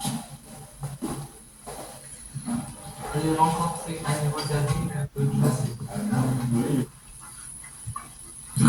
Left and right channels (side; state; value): both; identical; correlation 1.00